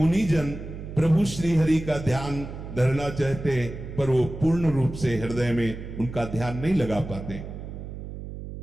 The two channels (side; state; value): right; noise; hum, 10 dB below the sound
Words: प्रभु श्री हरि का ध्यान धरना चाहते हैं, पर वो पूर्ण रूप से हृदय में उनका ध्यान नहीं लगा पाते।